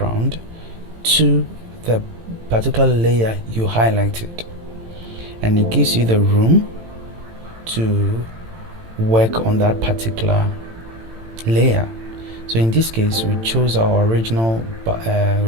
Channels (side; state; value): left; late; 18 ms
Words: to the particular layer you highlighted, and it gives you the room to work on that particular layer. So in this case, we chose our original